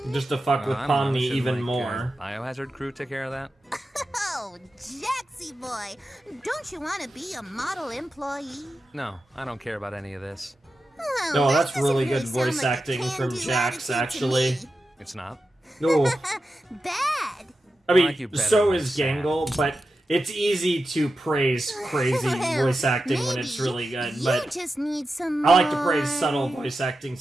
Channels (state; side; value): normal; both; correlation 0.91